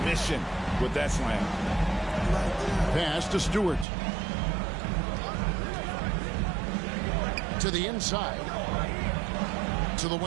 mission with that slam. Pass to Stewart. To the inside. To the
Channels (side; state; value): left; drops out; at 3.9 s